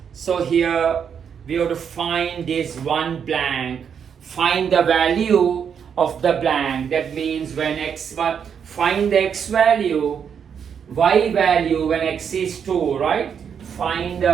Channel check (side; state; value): left; quieter; 7.5 dB